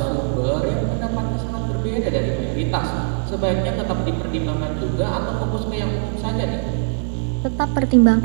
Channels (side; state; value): left; silent; 65 dB below the other